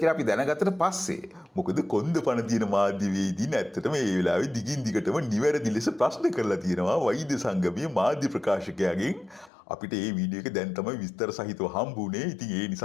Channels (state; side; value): drops out; right; at 9.5 s